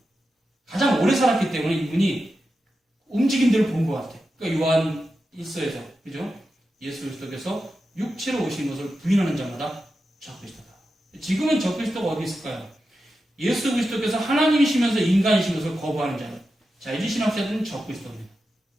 가장 오래 살았기 때문에 이분이 움직임들을 본 것 같아요. 그러니까 요한 1서에서 그죠? 예수 그리스도께서 육체로 오신 것을 부인하는 자마다 적그리스도다. 지금은 적그리스도가 어디 있을까요? 예수 그리스도께서 하나님이시면서 인간이신 것을 거부하는 자들. 자유주의 신학자들은 적그리스도입니다.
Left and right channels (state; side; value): normal; both; correlation 0.90